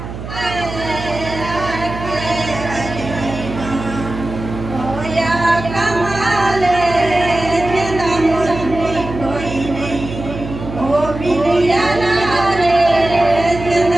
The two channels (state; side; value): noise; right; hum, 9 dB below the sound